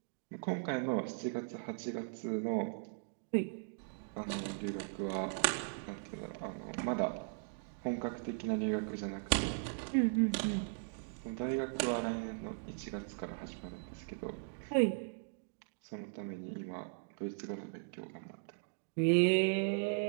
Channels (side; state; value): left; silent; digital silence